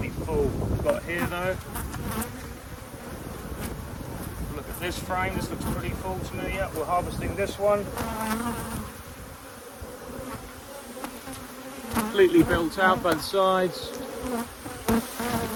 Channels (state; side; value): identical; both; correlation 1.00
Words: full. We've got here though. Look at this frame, this looks pretty full to me. Yeah, we're harvesting this one. Completely built out both sides.